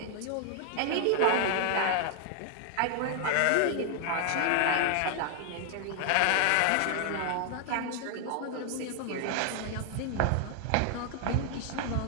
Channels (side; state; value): both; different; correlation 0.00